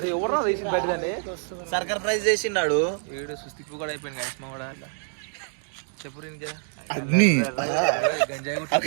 ఎవరు తీసి పెట్టదండి సర్కార్ ప్రైజ్ చేసిండాడు వీడు సుస్థిప్పు కూడా అయిపోయింది గైస్మా కూడా చెప్పు ఇంకా అన్ని గంజాయి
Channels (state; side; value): silent; left; digital silence